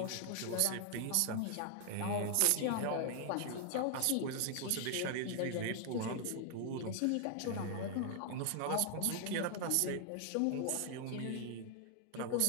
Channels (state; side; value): different; both; correlation 0.00